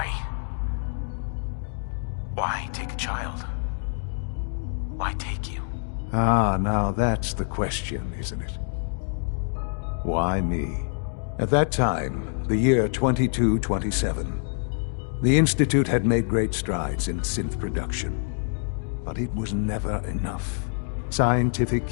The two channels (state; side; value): silent; right; 61 dB below the other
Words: Why take a child? Why take you? Ah, now that's the question, isn't it? Why me? At that time, the year 2227, the Institute had made great strides in synth production. But it was never enough. Scientific